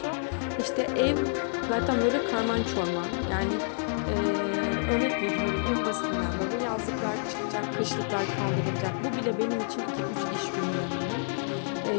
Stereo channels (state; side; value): silent; right; digital silence